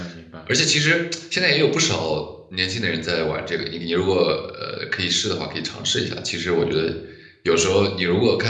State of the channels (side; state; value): both; identical; correlation 1.00